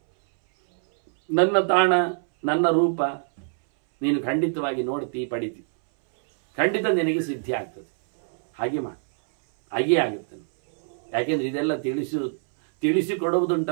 ನನ್ನ ತಾಣ, ನನ್ನ ರೂಪ ನೀನು ಖಂಡಿತವಾಗಿ ನೋಡ್ತಿ, ಪಡಿತಿ, ಖಂಡಿತ ನಿನಗೆ ಸಿದ್ಧಿ ಆಗ್ತದೆ. ಹಾಗೆ ಮಾಡಿ, ಹಾಗೇ ಆಗುತ್ತೆ. ಯಾಕೆಂದ್ರೆ ಇದೆಲ್ಲ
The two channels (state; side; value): silent; left; 61 dB below the other